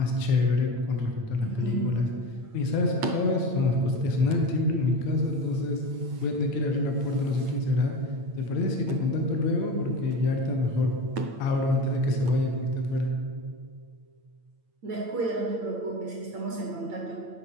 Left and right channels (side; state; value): left; late; 8.9 ms